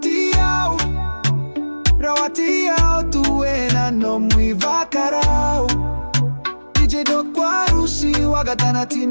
Rawatiao tuena no mui vakarao. DJ do Warusi wagatana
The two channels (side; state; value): both; inverted; correlation -1.00